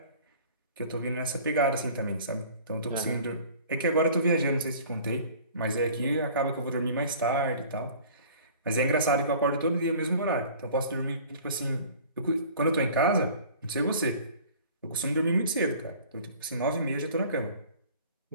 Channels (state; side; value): inverted; both; correlation -0.47